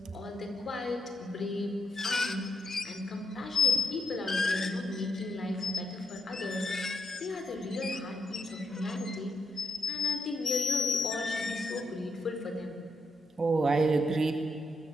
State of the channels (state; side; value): normal; both; correlation 0.78